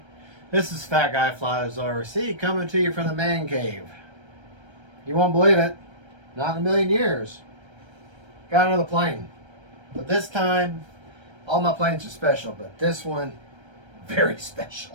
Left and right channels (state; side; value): late; left; 1.3 ms